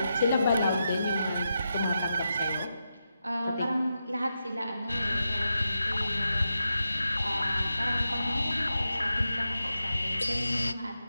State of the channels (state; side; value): inverted; both; correlation -0.87